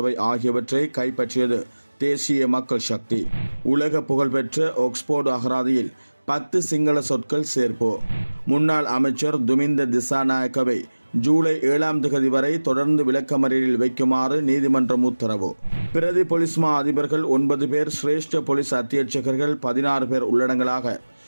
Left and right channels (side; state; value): both; inverted; correlation -1.00